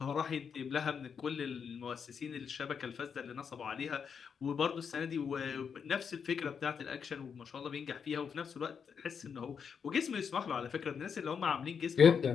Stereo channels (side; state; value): right; quieter; 6.7 dB